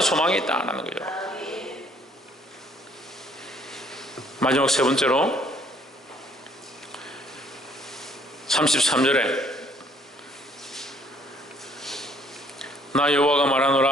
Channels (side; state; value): both; normal; correlation 0.62